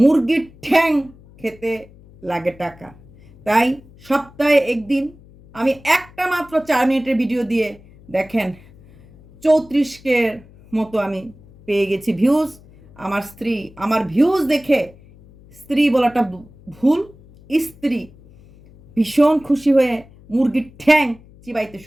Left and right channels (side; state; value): left; noise; hum, 24 dB below the sound